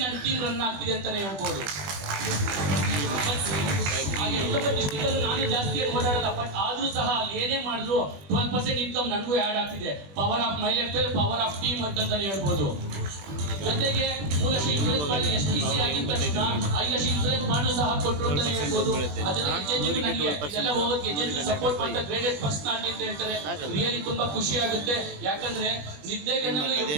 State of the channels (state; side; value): late; left; 20 ms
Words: ನನ್ನ ಟೀಮ್ ರನ್ ಆಗ್ತಿದೆ ಅಂತಾನೆ ಹೇಳ್ಬೋದು. ನಾನು ಜಾಸ್ತಿ ಏನು ಓಡಾಡಲ್ಲ, ಬಟ್ ಆದ್ರೂ ಸಹ ಅಲ್ಲಿ ಏನೇ ಮಾಡಿದ್ರು 12% ಇನ್ಕಮ್ ನನಗೂ ಆಡ್ ಆಗ್ತಿದೆ. Power of my life style, power of team ಅಂತಾನೆ ಹೇಳ್ಬೋದು. ಜೊತೆಗೆ 3 ಲಕ್ಷ ಇನ್ಸೂರೆನ್ಸ್ ಮಾಡಿ STC ಆಗಿದ ತಕ್ಷಣ 5 ಲಕ್ಷ ಇನ್ಸೂರೆನ್ಸ್ ಬಾಂಡು ಸಹ ಕೊಟ್ಟರು ಅಂತಾನೆ ಹೇಳ್ಬೋದು. ಅದೆಲ್ಲ ಹೋಗೋಕೆ ಸಪೋರ್ಟ್ ಮಾಡ್ತಾ ಗ್ರೇಡೆಡ್ ಪರ್ಸನಾಲಿಟಿ ಅಂತ ಹೇಳ್ತಾರೆ. ರಿಯಲಿ ತುಂಬಾ ಖುಷಿ ಆಗುತ್ತೆ. ಯಾಕಂದ್ರೆ ನಿದ್ದೆಗಣ್ಣಲ್ಲಿ